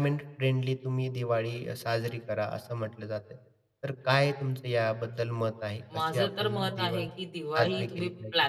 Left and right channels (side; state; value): both; identical; correlation 1.00